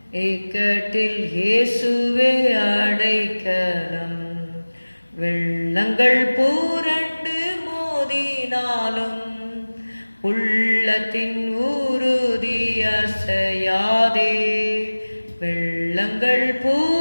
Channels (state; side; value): inverted; both; correlation -1.00